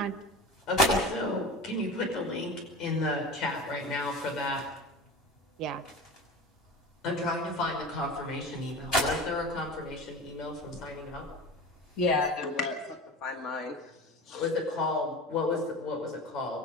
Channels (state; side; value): normal; both; correlation 0.33